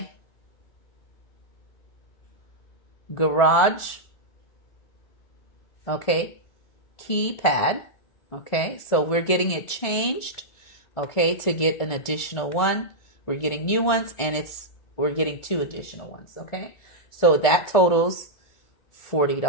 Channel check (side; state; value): right; late; 1.5 ms